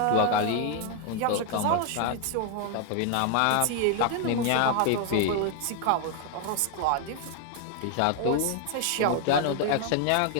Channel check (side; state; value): both; different; correlation 0.00